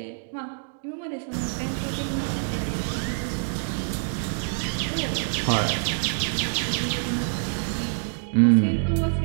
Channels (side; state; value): left; silent; digital silence